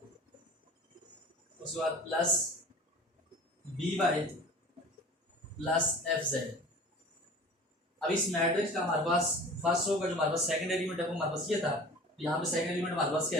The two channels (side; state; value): both; normal; correlation 0.41